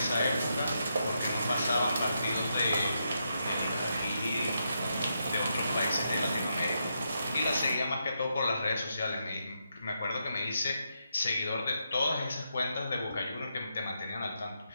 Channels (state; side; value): inverted; both; correlation -0.81